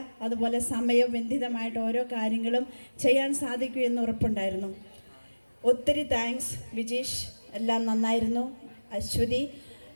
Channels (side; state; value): both; inverted; correlation -1.00